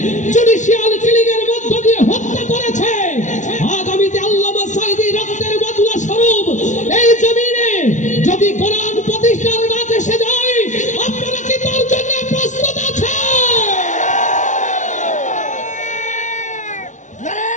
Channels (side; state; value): right; late; 0.36 ms